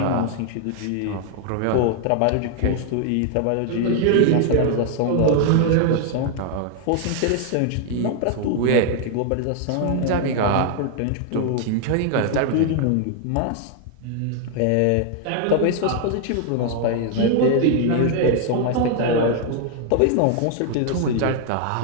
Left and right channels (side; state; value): both; different; correlation 0.00